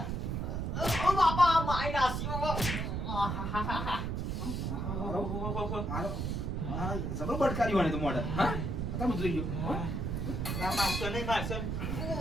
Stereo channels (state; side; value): noise; right; rumble, 1 dB below the sound